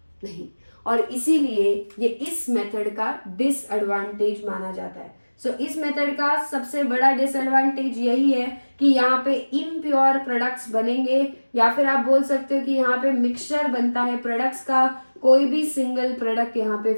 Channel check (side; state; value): both; inverted; correlation -1.00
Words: नहीं। और इसीलिए ये इस मेथड का डिसएडवांटेज माना जाता है। सो इस मेथड का सबसे बड़ा डिसएडवांटेज यही है कि यहाँ पे इम्प्योर प्रोडक्ट्स बनेंगे, या फिर आप बोल सकते हो कि यहाँ पे मिक्सचर बनता है प्रोडक्ट्स का, कोई भी सिंगल प्रोडक्ट यहाँ पे